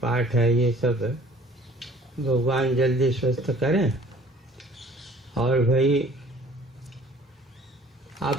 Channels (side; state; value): both; normal; correlation 0.52